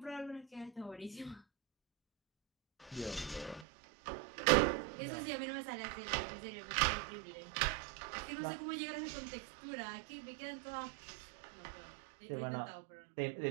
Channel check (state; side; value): drops out; left; at 3.7 s